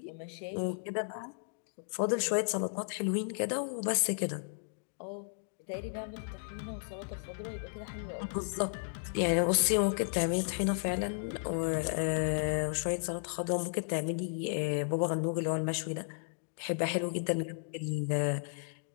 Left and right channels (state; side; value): silent; right; digital silence